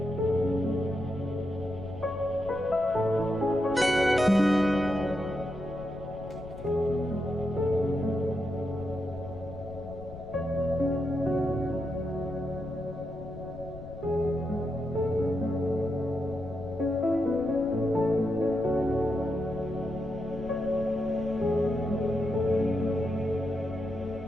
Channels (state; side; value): noise; left; rumble, 14 dB below the sound